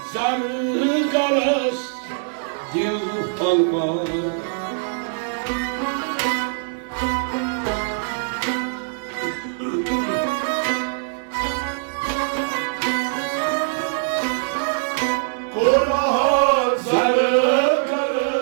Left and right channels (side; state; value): left; silent; digital silence